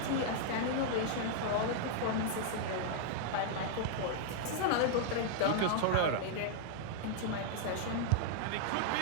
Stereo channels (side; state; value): both; different; correlation -0.01